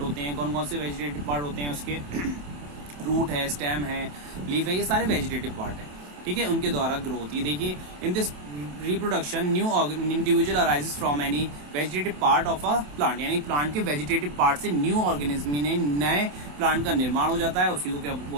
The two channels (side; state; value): left; late; 27 ms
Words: होते हैं। कौन कौन से वेजिटेटिव पार्ट होते हैं उसके? रूट है, स्टेम है, लीफ है, ये सारे वेजिटेटिव पार्ट है। ठीक है, उनके द्वारा ग्रो होती है। देखिए, in this reproduction new individual arises from any vegetative part of a plant, यानी प्लांट के वेजिटेटिव पार्ट से न्यू ऑर्गेनिज्म ने नए प्लांट का निर्माण हो जाता है। उसी को क्या